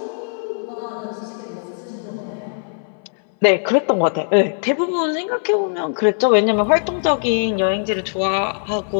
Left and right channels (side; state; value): right; silent; 60 dB below the other